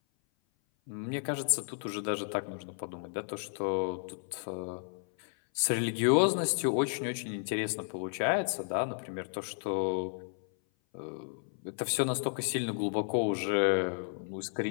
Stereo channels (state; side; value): silent; right; 56 dB below the other